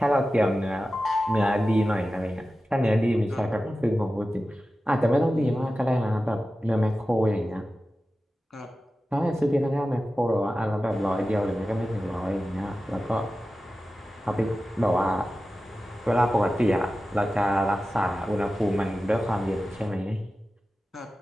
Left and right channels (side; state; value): both; normal; correlation 0.94